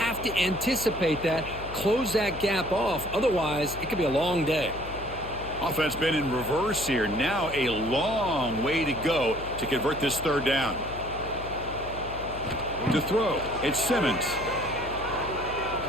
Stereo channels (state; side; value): noise; left; hum, 12 dB below the sound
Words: to anticipate that, close that gap off. Otherwise, it could be a long day. Offense been in reverse here. Now a long way to go to convert this 3rd down. To throw, it's Simmons.